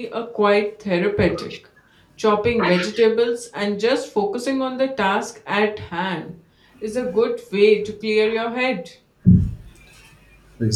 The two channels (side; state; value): both; identical; correlation 1.00